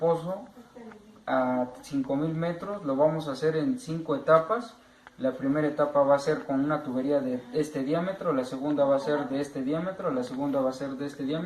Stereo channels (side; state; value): both; identical; correlation 1.00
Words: a 5000 metros, lo vamos a hacer en 5 etapas. La primera etapa va a ser con una tubería de este diámetro, la segunda va a ser de este diámetro, la segunda va a ser de este